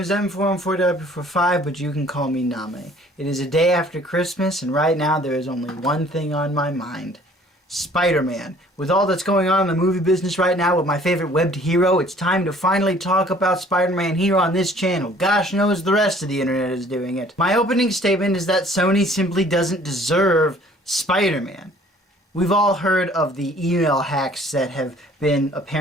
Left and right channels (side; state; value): both; normal; correlation 0.54